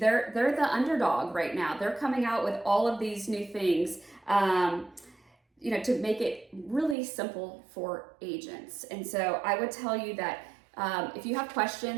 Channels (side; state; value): left; drops out; at 7.0 s